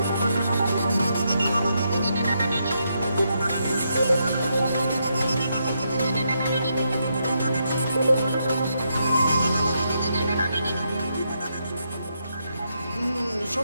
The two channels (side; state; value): both; inverted; correlation -0.80